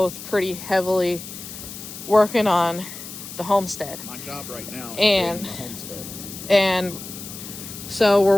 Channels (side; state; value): left; noise; hiss, 12 dB below the sound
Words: pretty heavily working on the homestead. My job right now is And the homestead. And so we're